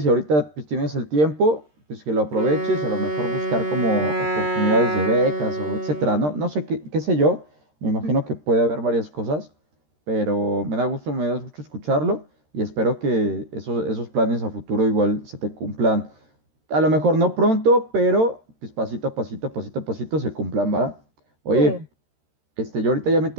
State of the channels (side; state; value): left; late; 13 ms